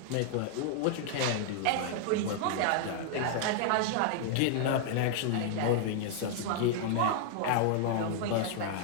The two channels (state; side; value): different; both; correlation -0.01